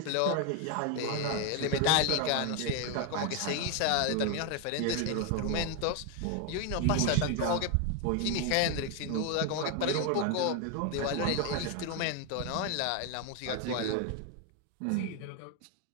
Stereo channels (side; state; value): both; different; correlation 0.01